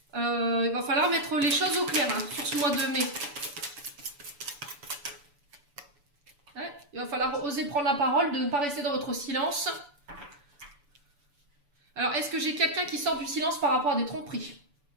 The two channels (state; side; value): late; left; 6.9 ms